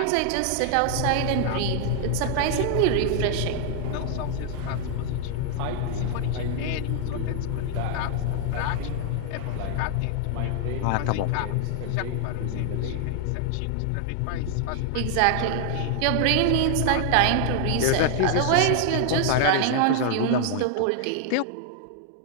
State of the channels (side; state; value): both; different; correlation 0.00